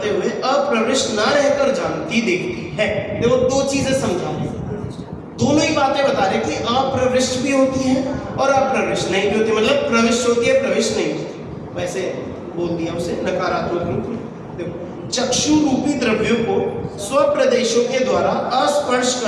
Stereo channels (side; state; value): both; identical; correlation 1.00